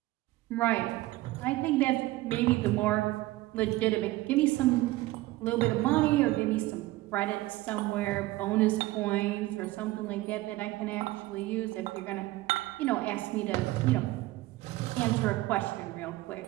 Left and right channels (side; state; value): left; quieter; 18.3 dB